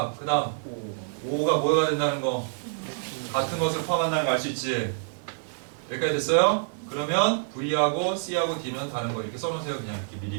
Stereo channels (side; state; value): left; silent; digital silence